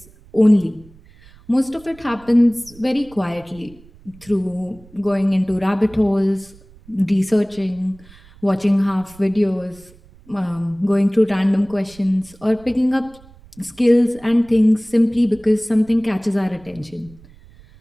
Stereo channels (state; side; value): noise; right; rumble, 25 dB below the sound